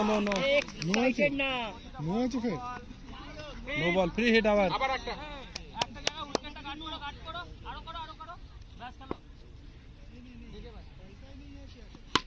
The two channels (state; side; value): identical; both; correlation 1.00